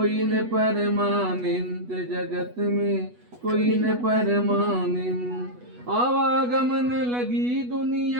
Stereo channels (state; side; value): late; left; 8.2 ms